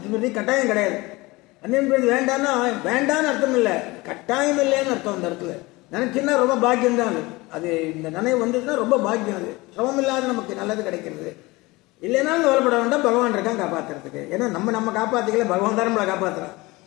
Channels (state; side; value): quieter; right; 22.2 dB